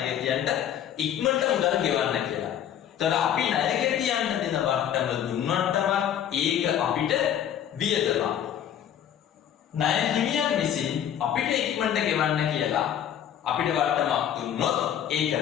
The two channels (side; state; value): right; quieter; 9.8 dB